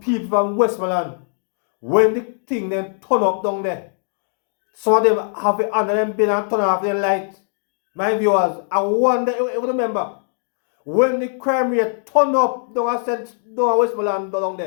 from Westmoreland, when the thing then turn up down there, some of them have it under them bin and turn off their light. My viewers, I wonder if you remember, when the crime rate turn up down Westmoreland down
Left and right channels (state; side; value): silent; right; 64 dB below the other